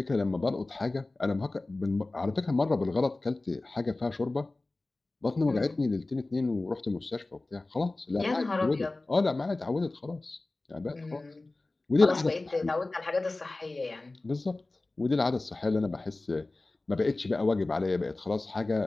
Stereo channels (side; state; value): right; quieter; 3.1 dB